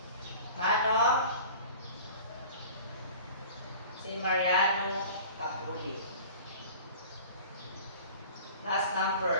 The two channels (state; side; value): inverted; both; correlation -0.42